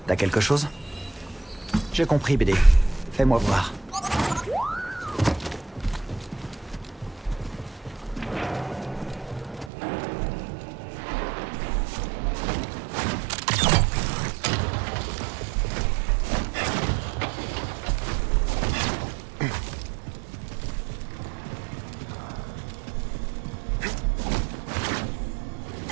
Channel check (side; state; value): left; drops out; at 9.7 s